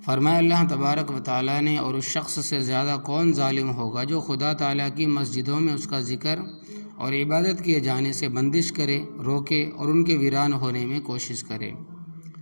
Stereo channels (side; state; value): both; inverted; correlation -1.00